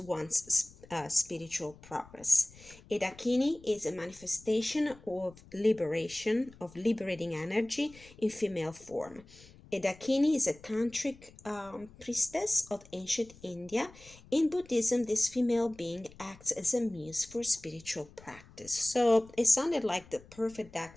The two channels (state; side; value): noise; left; rumble, 22 dB below the sound